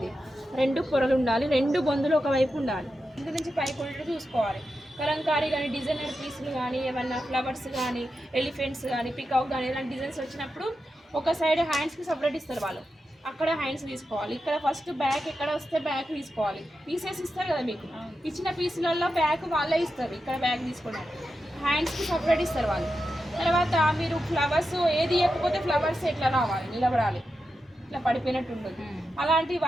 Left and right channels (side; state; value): both; normal; correlation 0.89